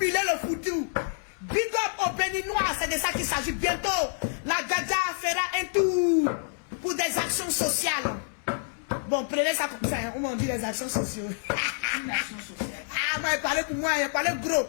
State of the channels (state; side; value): silent; right; 60 dB below the other